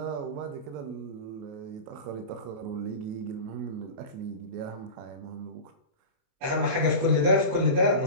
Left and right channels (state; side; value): late; left; 28 ms